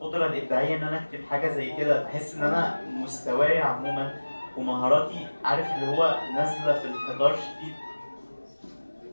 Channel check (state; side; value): inverted; both; correlation -1.00